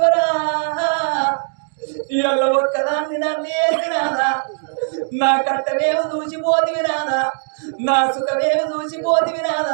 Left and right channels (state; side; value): silent; left; 65 dB below the other